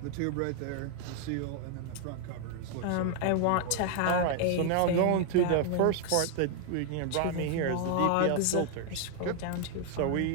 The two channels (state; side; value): different; both; correlation 0.00